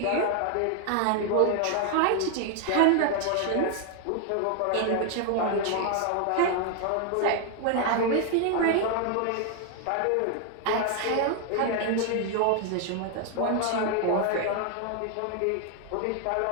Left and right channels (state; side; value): different; both; correlation 0.00